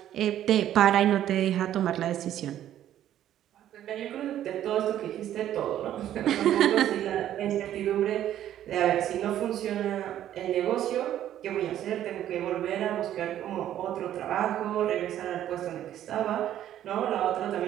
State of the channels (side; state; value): left; quieter; 11.6 dB